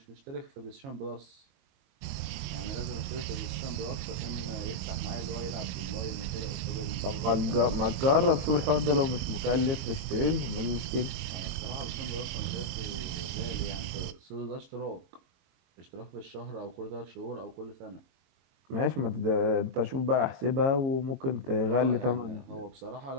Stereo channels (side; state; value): left; late; 22 ms